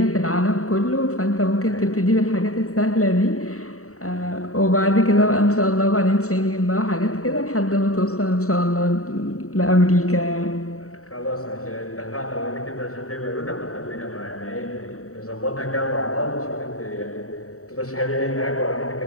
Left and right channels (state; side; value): late; right; 0.65 ms